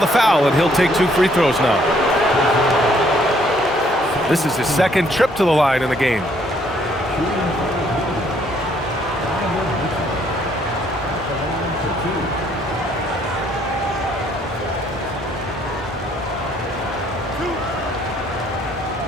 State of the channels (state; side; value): normal; both; correlation 0.66